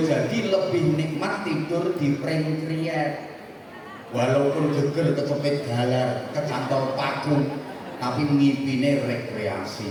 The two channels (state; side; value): identical; both; correlation 1.00